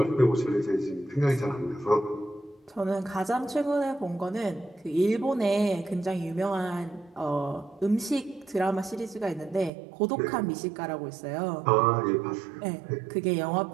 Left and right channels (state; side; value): drops out; left; at 9.7 s